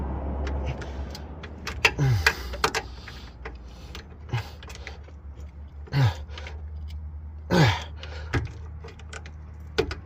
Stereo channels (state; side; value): identical; both; correlation 1.00